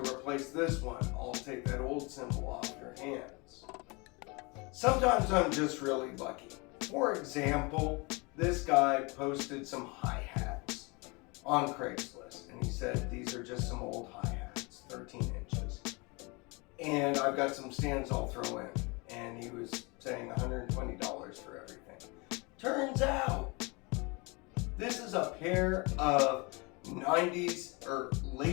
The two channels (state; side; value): quieter; right; 28.2 dB